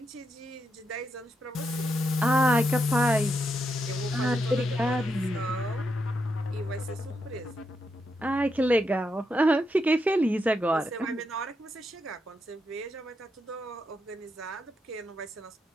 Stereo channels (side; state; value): both; normal; correlation 0.83